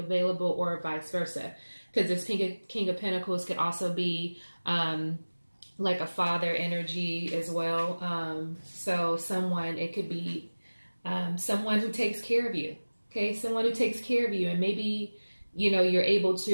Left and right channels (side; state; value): both; inverted; correlation -1.00